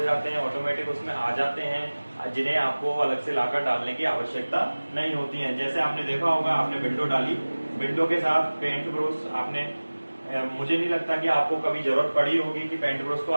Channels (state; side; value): inverted; both; correlation -1.00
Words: जाते हैं, ऑटोमेटिक उसमें आ जाते हैं, जिन्हें आपको अलग से लाकर डालने की आवश्यकता नहीं होती है। जैसे आपने देखा होगा, आपने विंडो डाली, विंडो के साथ पेंट ब्रश आपने, मुझे नहीं लगता कि आपको कभी जरूरत पड़ी होगी कि पेंट ब्रश को